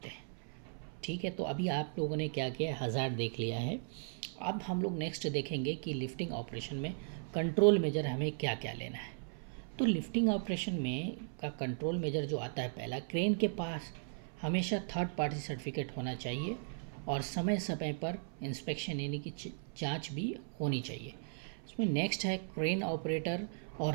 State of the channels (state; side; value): silent; left; 53 dB below the other